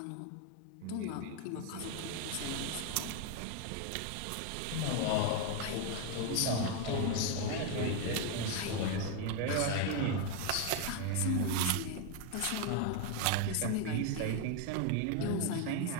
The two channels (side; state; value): both; different; correlation 0.01